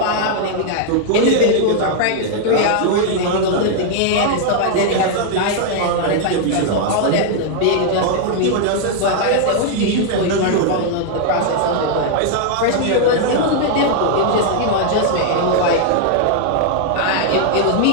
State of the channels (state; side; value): different; both; correlation 0.00